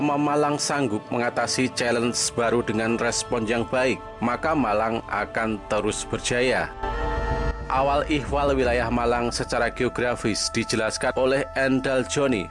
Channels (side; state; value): both; identical; correlation 1.00